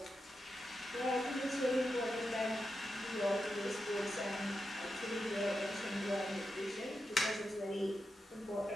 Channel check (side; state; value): both; normal; correlation 0.88